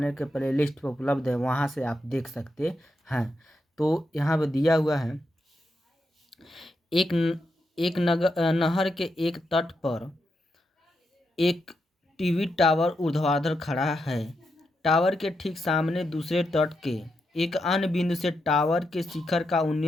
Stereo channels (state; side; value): normal; both; correlation 0.84